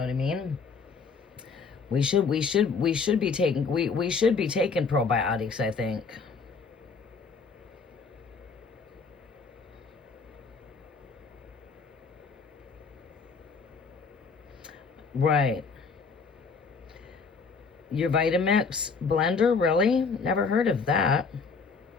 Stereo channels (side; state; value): right; quieter; 5.0 dB